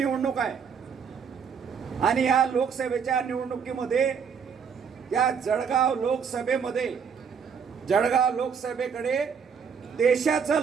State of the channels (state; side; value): quieter; left; 6.6 dB